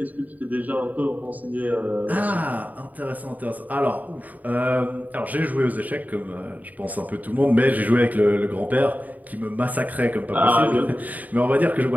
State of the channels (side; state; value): left; late; 0.077 ms